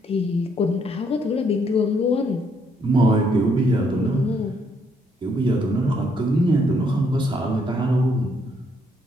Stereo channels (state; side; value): normal; both; correlation 0.71